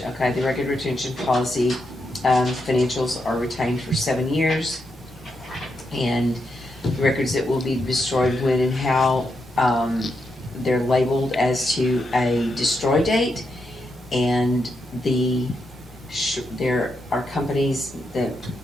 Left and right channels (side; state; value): both; normal; correlation 0.83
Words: okay, the record retention policy, financials are retained for 7 years. And records that will be destroyed when and how, they're labeled as to a destroy date. And there are companies that